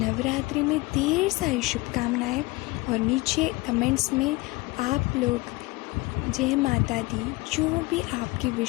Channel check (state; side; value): quieter; right; 22.4 dB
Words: में ढेर सारी शुभकामनाएं, और नीचे कमेंट्स में आप लोग जय माता दी जो भी आपकी